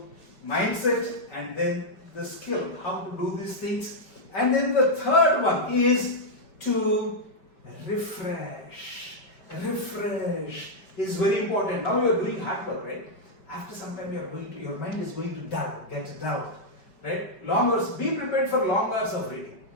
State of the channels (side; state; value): right; late; 5.2 ms